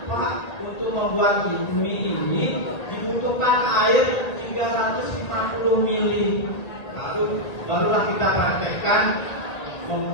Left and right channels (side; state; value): right; late; 1.7 ms